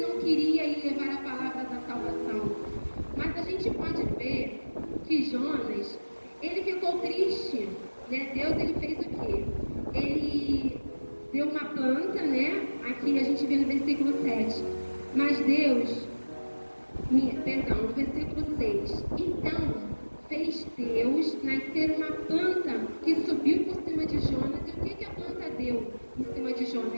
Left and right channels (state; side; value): inverted; both; correlation -1.00